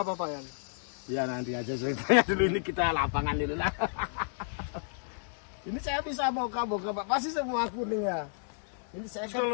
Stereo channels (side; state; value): right; silent; 57 dB below the other